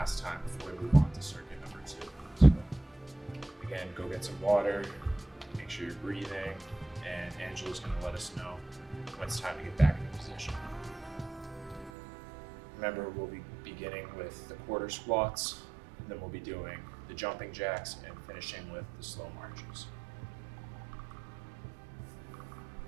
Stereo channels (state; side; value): drops out; left; at 11.9 s